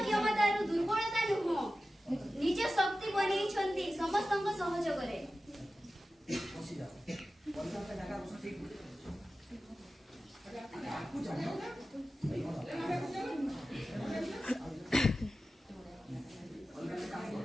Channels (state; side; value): normal; both; correlation 0.94